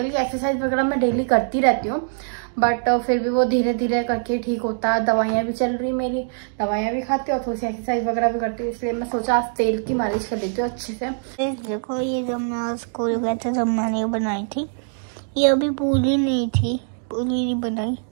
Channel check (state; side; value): silent; left; digital silence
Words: की एक्सरसाइज वगैरह मैं डेली करती रहती हूँ, बट फिर भी वो धीरे धीरे करके ठीक होता है। दवाइयाँ भी चल रही मेरी, दवाइयाँ भी खाती हूँ और थोड़ी सी एक्सरसाइज वगैरह भी करती हूँ, इसलिए मैं सोचा आज तेल की मालिश कर देती हूँ अच्छे से। देखो ये जब मैं स्कूल गए थे तब मैंने बनाई थी, ये अभी पूरी नहीं थी, पूरी नहीं बनाई।